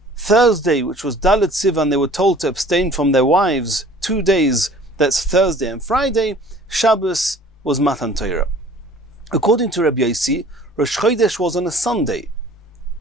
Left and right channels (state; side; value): normal; both; correlation 0.50